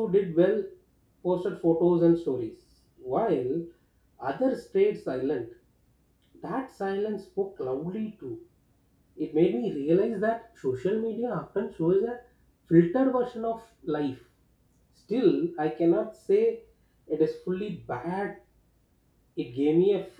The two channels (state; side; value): identical; both; correlation 1.00